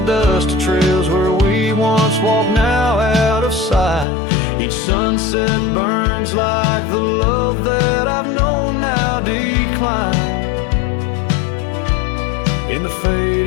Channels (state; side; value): drops out; right; at 4.0 s